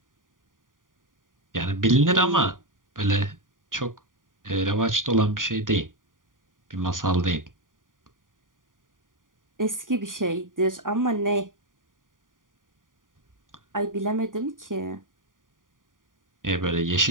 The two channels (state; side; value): late; left; 0.89 ms